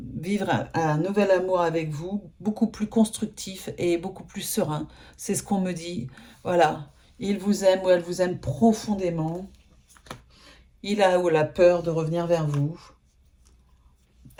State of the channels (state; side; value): identical; both; correlation 1.00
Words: un nouvel amour avec vous, beaucoup plus constructif et beaucoup plus serein. C'est ce qu'on me dit. Voilà. Il vous aime ou elle vous aime profondément. Il a ou la peur de revenir vers vous.